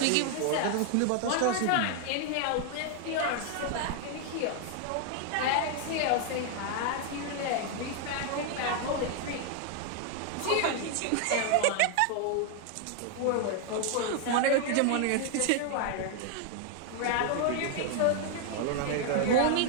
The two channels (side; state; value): both; different; correlation 0.00